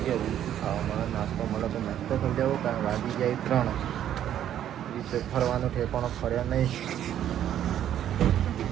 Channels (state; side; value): quieter; left; 10.8 dB